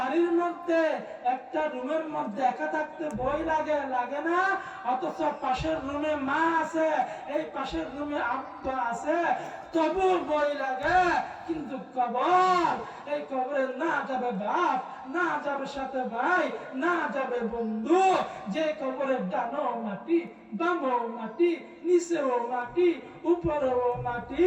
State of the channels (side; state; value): both; identical; correlation 1.00